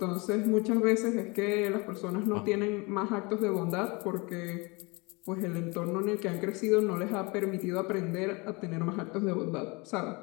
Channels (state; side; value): quieter; right; 27.3 dB